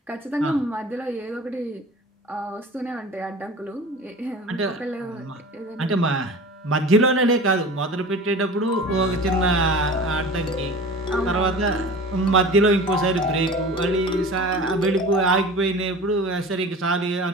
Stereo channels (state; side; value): normal; both; correlation 0.38